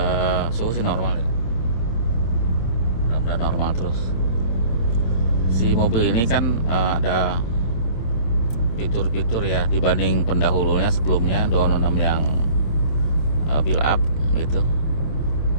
Suhu sih normal ya, mudah-mudahan normal terus. Si mobil ini kan ada fitur-fitur ya dibanding pendahulunya sebelumnya 206 yang build up gitu.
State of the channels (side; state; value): right; late; 26 ms